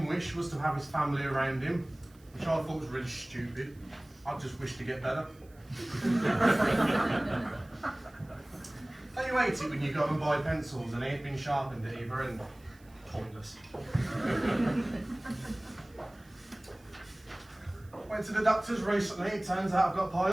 wish was to have his family around him, which I thought was really stupid. I just wished to get better. Don't you hate it when you go and buy pencils and they ain't been sharpened at either end? Pointless. Went to the doctors recently, it turns out I've got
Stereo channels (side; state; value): right; noise; hiss, 29 dB below the sound